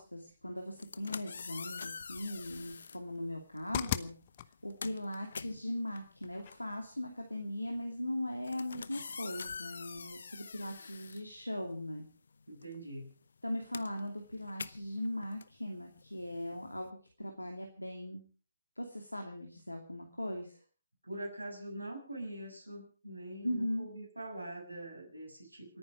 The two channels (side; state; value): both; inverted; correlation -0.90